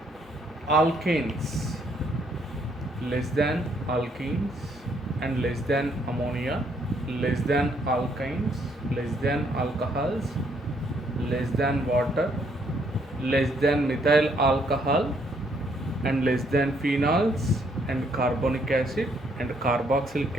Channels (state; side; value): normal; both; correlation 0.70